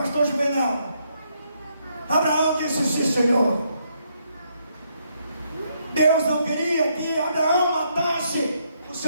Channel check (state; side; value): inverted; both; correlation -0.75